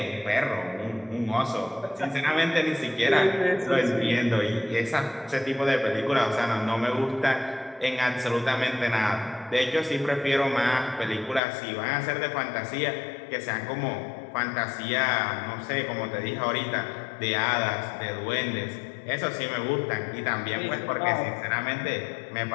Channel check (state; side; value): drops out; right; at 11.4 s